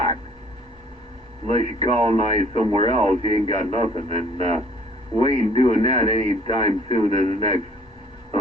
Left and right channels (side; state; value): both; normal; correlation 0.56